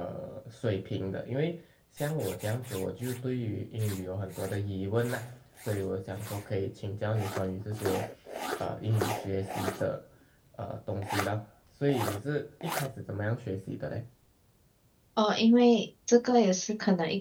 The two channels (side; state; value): both; identical; correlation 1.00